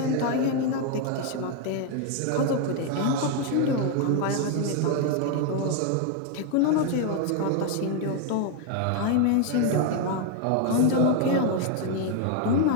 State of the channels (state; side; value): different; both; correlation 0.01